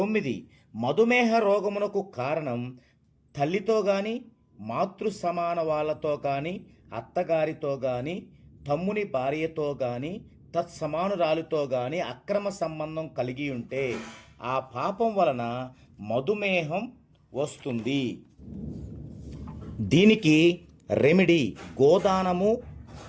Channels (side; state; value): both; identical; correlation 1.00